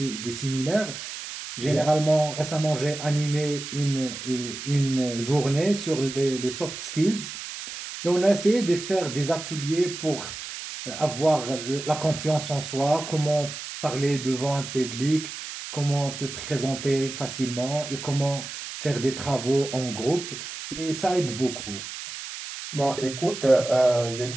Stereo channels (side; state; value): right; noise; hiss, 9 dB below the sound